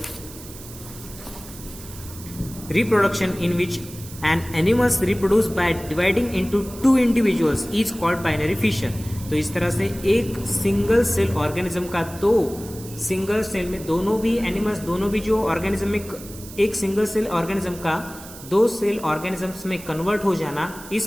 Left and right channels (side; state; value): right; noise; hiss, 16 dB below the sound